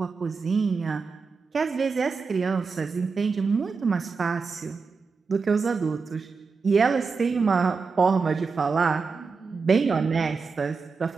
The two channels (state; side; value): quieter; left; 4.8 dB